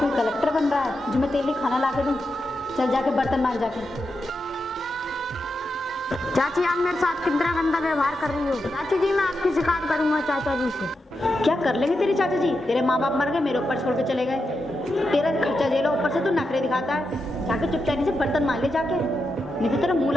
कलेक्टर बन रहा है जो मैं तेरे लिए खाना ला के दूँ? चल जाके बर्तन मांज जाके। चाची आप मेरे साथ कितना गंदा व्यवहार कर रही हो। चाची जी मैं आपकी शिकायत करूंगा चाचा जी से। क्या कर लेंगे तेरे चाचा जी? तेरे माँ बाप मर गए, मेरे ऊपर छोड़ के चले गए। तेरा खर्चा झेलो, ऊपर से तू नखरे दिखाता है। जाके चुपचाप से बर्तन मांज ले जाके, नहीं तो तेरा मुंह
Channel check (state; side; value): normal; both; correlation 0.87